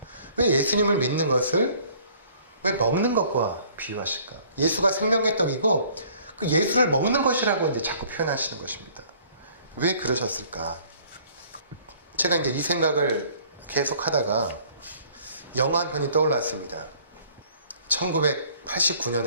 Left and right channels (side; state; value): both; inverted; correlation -0.56